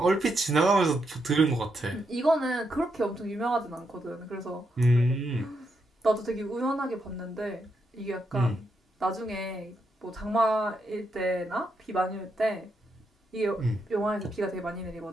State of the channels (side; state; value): both; normal; correlation 0.81